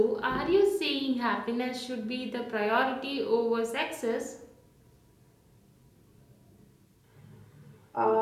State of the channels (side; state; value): both; identical; correlation 1.00